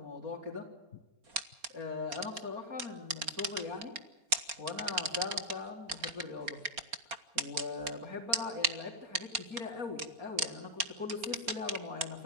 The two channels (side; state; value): left; late; 4.3 ms